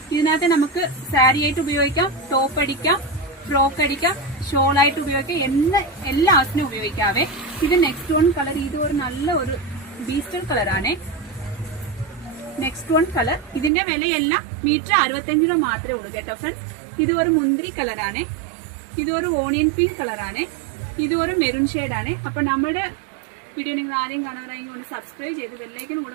ഇതിനകത്ത് നമുക്ക് സാരി ആയിട്ട് ഉപയോഗിക്കാം, ടോപ്പ് അടിക്കാം, ഫ്രോക്ക് അടിക്കാം, ഷോൾ ആയിട്ട് ഉപയോഗിക്കാം, എല്ലാ ആവശ്യത്തിനും ഉപയോഗിക്കാവേ. ഇത് നെക്സ്റ്റ് വൺ കളർ, ഇത് ഒരു നല്ല ഒരു ബീസ്റ്റർ കളർ ആണ്. നെക്സ്റ്റ് വൺ കളർ, ഇതിന്റെ വിലയെല്ലാം മീറ്റർ 65 രൂപ മാത്രമേ ഉള്ളൂ കേട്ടോ ഫ്രണ്ട്സ്. ഇത് ഒരു മുന്തിരി കളറാണ്, ഇത് ഒരു ഓണിയൻ പിങ്ക് കളറാണ്, ഇത് ഒരു മെറൂൺ ഷെയ്ഡാണ്. അപ്പൊ നമ്മുടെ വീഡിയോ നിങ്ങൾ ആദ്യം കാണുകയാണെങ്കിൽ ഒന്ന് സബ്സ്ക്രൈബ് ചെയ്ത് ബെല്ലൈക്കൻ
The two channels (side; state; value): left; drops out; at 13.7 s